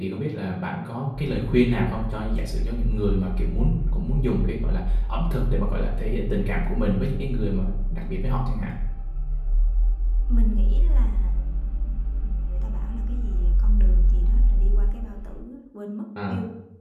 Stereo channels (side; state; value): both; identical; correlation 1.00